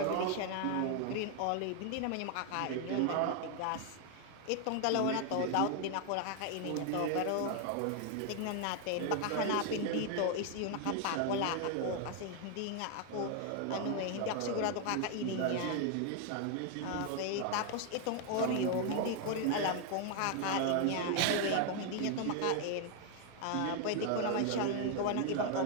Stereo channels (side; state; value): both; different; correlation 0.00